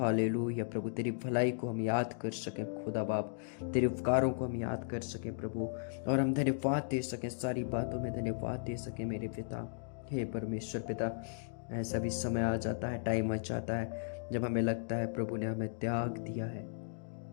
प्रभु, तेरी भलाई को हम याद कर सकें खुदा बाप, तेरे उपकारों को हम याद कर सकें प्रभु, और हम धन्यवाद दे सकें, सारी बातों में धन्यवाद दे सकें मेरे पिता। हे परमेश्वर पिता, ऐसा भी समय आ जाता है, टाइम आ जाता है जब हमें लगता है प्रभु ने हमें त्याग दिया है।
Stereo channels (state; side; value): silent; right; digital silence